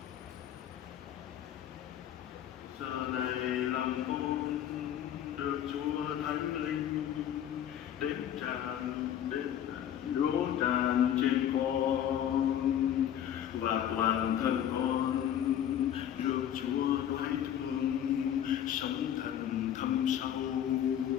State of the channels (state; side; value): quieter; right; 10.3 dB